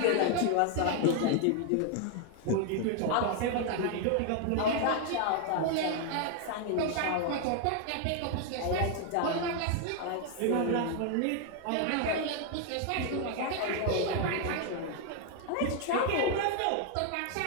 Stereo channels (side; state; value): both; different; correlation 0.00